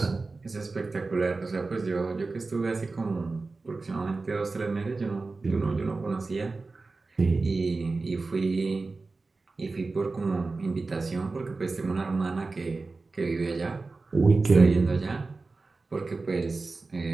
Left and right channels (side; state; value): left; quieter; 3.7 dB